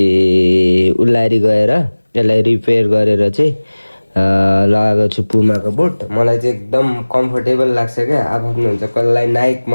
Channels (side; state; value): both; inverted; correlation -1.00